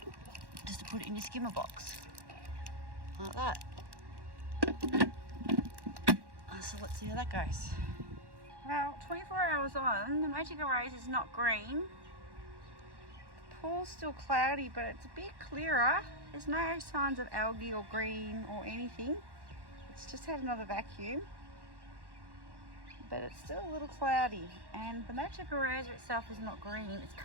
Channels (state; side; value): late; left; 1.1 ms